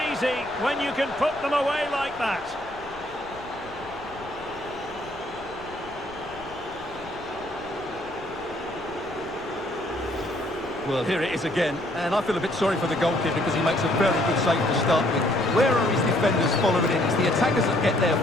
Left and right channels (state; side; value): noise; left; rumble, 20 dB below the sound